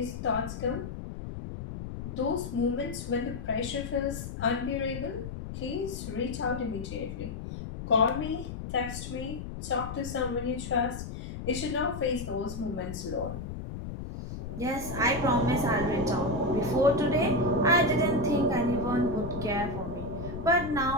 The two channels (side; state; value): left; noise; rumble, 8 dB below the sound